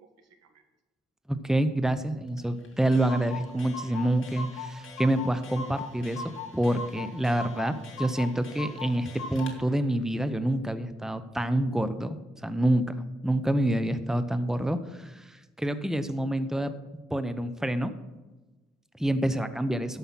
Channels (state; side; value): normal; both; correlation 0.88